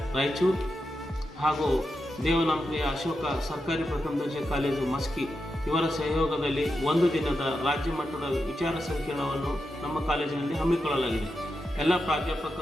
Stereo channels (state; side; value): normal; both; correlation 0.88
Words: ರಾಯಚೂರು ಹಾಗೂ ದೇವನಾಂಪ್ರಿಯ ಅಶೋಕ ಸರ್ಕಾರಿ ಪ್ರಥಮ ದರ್ಜೆ ಕಾಲೇಜು ಮಸ್ಕಿ ಇವರ ಸಹಯೋಗದಲ್ಲಿ ಒಂದು ದಿನದ ರಾಜ್ಯ ಮಟ್ಟದ ವಿಚಾರ ಸಂಕಿರಣವನ್ನು ನಮ್ಮ ಕಾಲೇಜಿನಲ್ಲಿ ಹಮ್ಮಿಕೊಳ್ಳಲಾಗಿದೆ. ಎಲ್ಲ